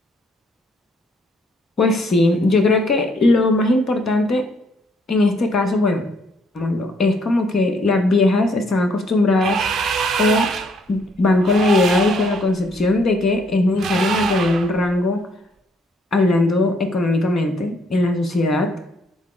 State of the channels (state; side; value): normal; both; correlation 0.67